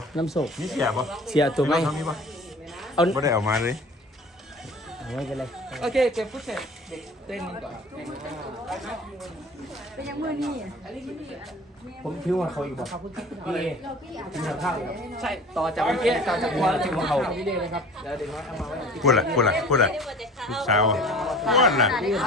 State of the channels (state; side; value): normal; both; correlation 0.44